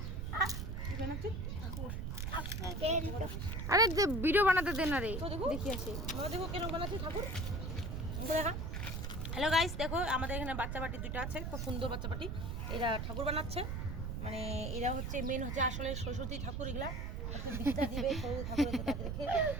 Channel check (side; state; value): right; noise; rumble, 3 dB below the sound